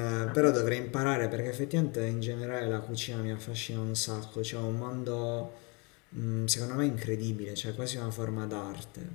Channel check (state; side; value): quieter; right; 31.0 dB